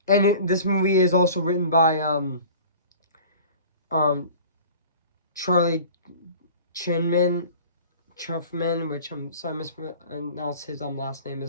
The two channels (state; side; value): inverted; both; correlation -0.44